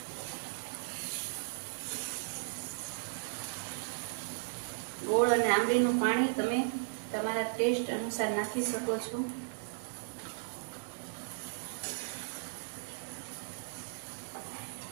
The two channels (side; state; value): left; silent; digital silence